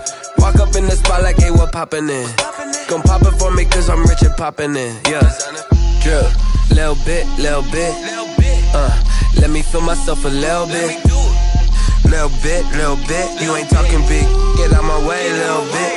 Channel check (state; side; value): identical; both; correlation 1.00